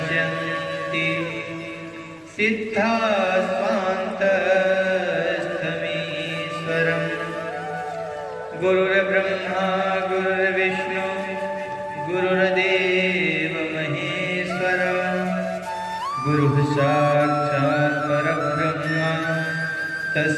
सिद्धास्वान्तस्थमीश्वरम्। गुरुर्ब्रह्मा गुरुर्विष्णु गुरुर्देव महेश्वर गुरुः साक्षात् परब्रह्म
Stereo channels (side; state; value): both; identical; correlation 1.00